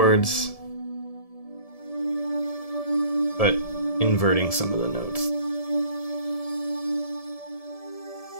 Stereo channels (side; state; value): right; late; 1.7 ms